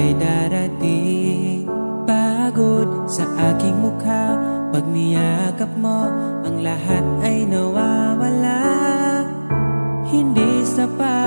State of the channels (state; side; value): inverted; both; correlation -1.00